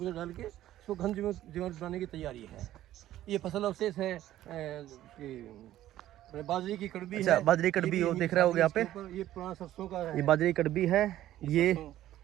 डाल के इसको घन जीवामृत बनाने की तैयारी है। ये फसल अवशेष है बाजरे की कड़बी। अच्छा, बाजरे की कड़बी, वो देख रहे हो यहाँ पे, ये पुराना सरसों का है। ये बाजरे की कड़बी है। ये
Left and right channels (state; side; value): quieter; left; 13.5 dB